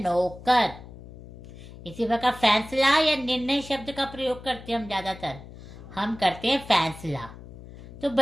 इसी प्रकार फैसला या निर्णय शब्द का प्रयोग करते हैं हम ज्यादातर, हम करते हैं फैसला। तो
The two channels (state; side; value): noise; left; hum, 16 dB below the sound